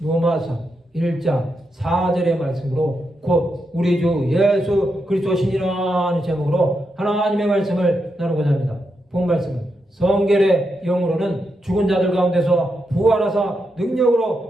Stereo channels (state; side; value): normal; both; correlation 0.84